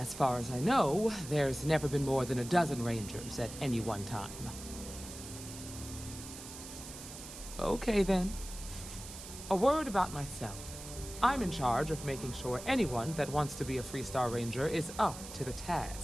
far as I know, there's never been more than a dozen Rangers at any one time. Okay then. A word about myself. I'm in charge of making sure anyone that wants to be a Freestar Ranger is up to the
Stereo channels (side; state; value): right; noise; hiss, 12 dB below the sound